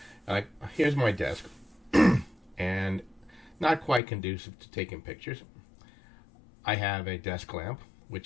like here's my desk, and not quite conducive to taking pictures. I have a desk lamp,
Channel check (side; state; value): right; drops out; at 4.0 s